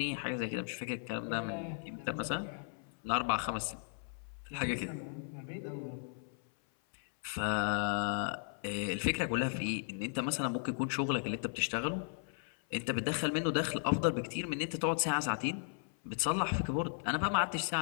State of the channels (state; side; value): silent; right; 54 dB below the other